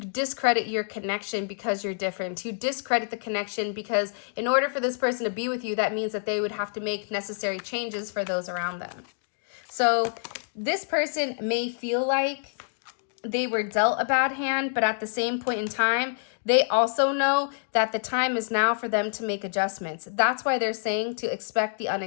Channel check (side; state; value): right; silent; digital silence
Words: your connection because you're different, to discredit the connection because in order for this person to be with you, that means that they would have to make necessary changes for those around them. So this person may feel like they were dealt a bad hand, but at the same point in time, they also know that the time is now for them to make adjustments. That's why they're saying to expect the